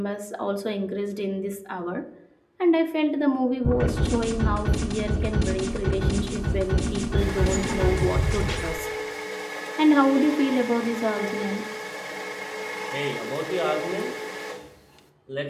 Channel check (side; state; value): both; identical; correlation 1.00